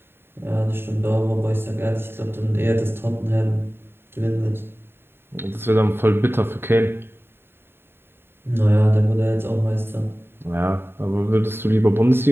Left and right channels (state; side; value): late; left; 0.11 ms